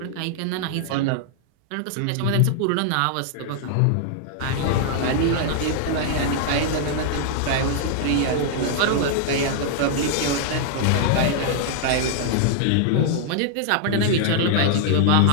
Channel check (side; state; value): both; different; correlation -0.01